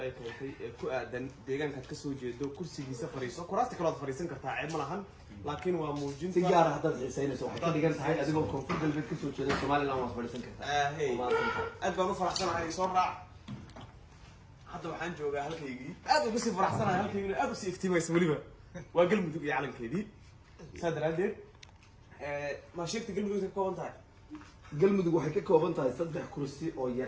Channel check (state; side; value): identical; both; correlation 1.00